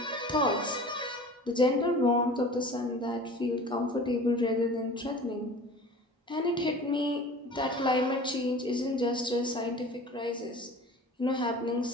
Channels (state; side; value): normal; both; correlation 0.41